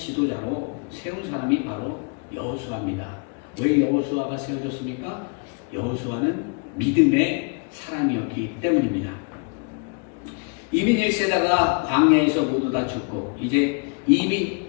세운 사람이 바로 여호수아입니다. 왜 여호수아가 세워졌습니까? 여호수아는 믿음의 사람이었기 때문입니다. 이민 1세대가 광야에서 모두 다 죽고 이제 이민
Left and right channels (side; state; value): right; quieter; 36.4 dB